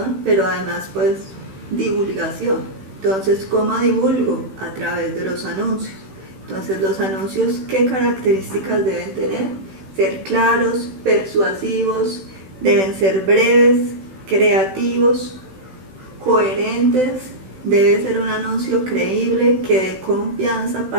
pero además pues divulgación. Entonces, ¿cómo divulgo? A través de los anuncios. Entonces, los anuncios, ¿qué características deben tener? Ser claros, persuasivos, deben ser breves, creativos, coherentes. Debe ser un anuncio creíble, que dé confianza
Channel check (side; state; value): left; late; 16 ms